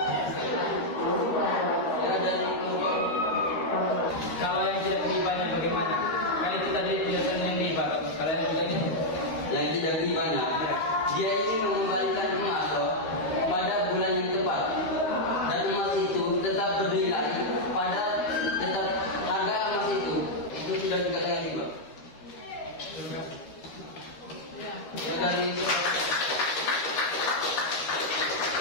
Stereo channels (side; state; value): right; late; 13 ms